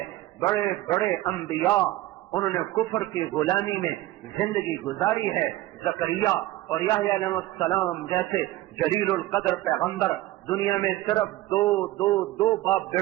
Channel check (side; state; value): left; quieter; 16.6 dB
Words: بڑے بڑے انبیاء انہوں نے کفر کی غلامی میں زندگی گزاری ہے. زکریا اور یحییٰ علیہ السلام جیسے جلیل القدر پیغمبر دنیا میں صرف دو باپ